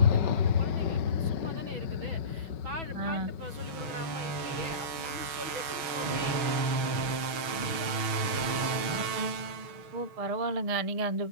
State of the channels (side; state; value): left; late; 6.3 ms